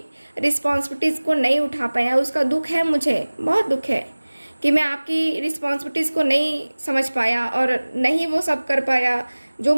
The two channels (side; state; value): both; inverted; correlation -1.00